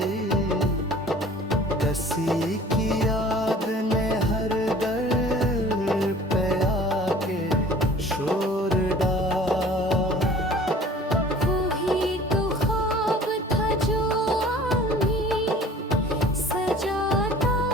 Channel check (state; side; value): normal; both; correlation 0.47